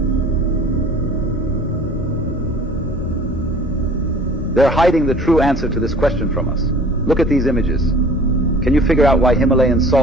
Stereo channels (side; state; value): both; normal; correlation 0.47